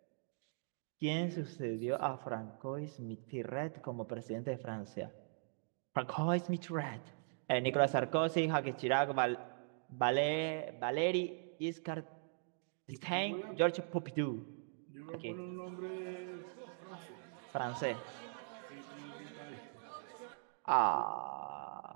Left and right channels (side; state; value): left; silent; digital silence